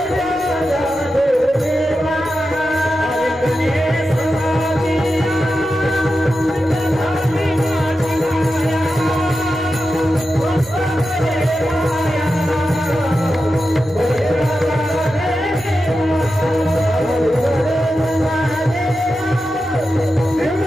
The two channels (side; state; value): left; noise; rumble, 29 dB below the sound